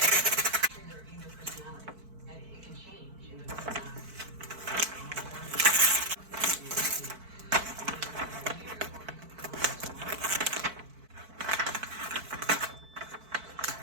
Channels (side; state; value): left; late; 4.5 ms